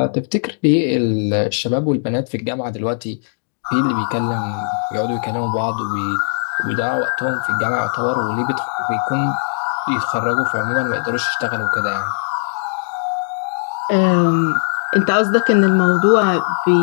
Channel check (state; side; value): silent; right; digital silence